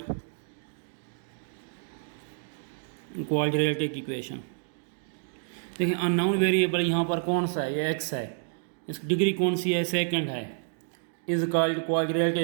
quadratic equation. देखिए unknown variable यहाँ पर कौन सा है, ये x है, इसकी डिग्री कौन सी है, सेकंड है, इज कॉल्ड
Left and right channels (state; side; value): silent; left; digital silence